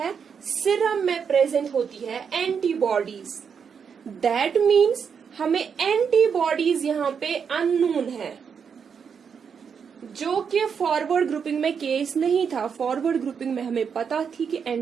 सीरम में प्रेजेंट होती है एंटीबॉडीज। दैट मीन्स हमें एंटीबॉडीज यहाँ पे अननोन है, जो कि फॉरवर्ड ग्रुपिंग में केस नहीं था। फॉरवर्ड ग्रुपिंग में हमें पता थी कि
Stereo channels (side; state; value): left; quieter; 6.7 dB